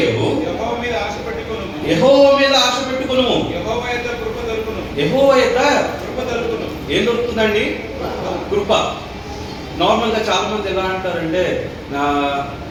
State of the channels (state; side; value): identical; both; correlation 1.00